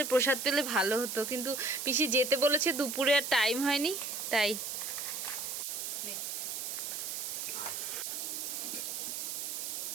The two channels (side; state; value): right; noise; hiss, 4 dB below the sound